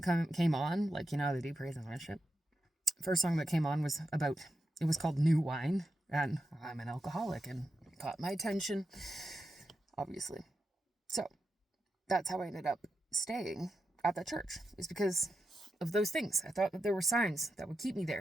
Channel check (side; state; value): both; normal; correlation 0.88